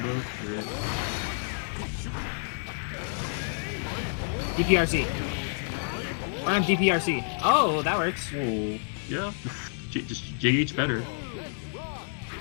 Yeah. DPRC. I'm DPRC. Oh, that works. Oh, yeah. Just JH better.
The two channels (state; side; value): silent; right; digital silence